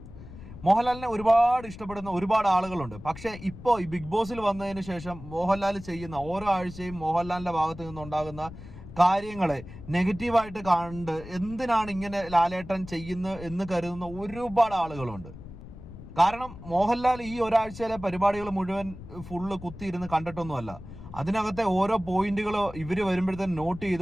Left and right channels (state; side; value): noise; left; rumble, 14 dB below the sound